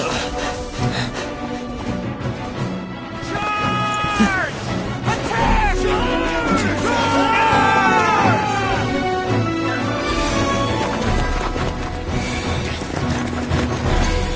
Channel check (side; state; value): both; identical; correlation 1.00